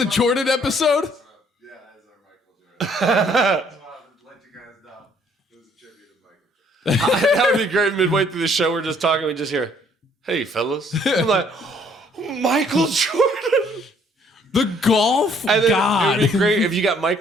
Jordan episode? Yeah, that is our Michael Jordan. Just wanted to let you guys know. It was a tribute to Michael Jordan. That would be great. Midway through the show, we're just talking. We just hear, "Hey, fellas." I'm like, Michael Jordan. The golf And then god. it would be great if you got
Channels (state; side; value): normal; both; correlation 0.63